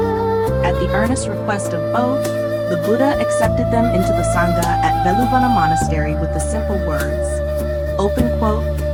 At the earnest request of both, the Buddha accepted them into the Sangha at Veluvana Monastery with the simple words, open quote,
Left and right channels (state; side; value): identical; both; correlation 1.00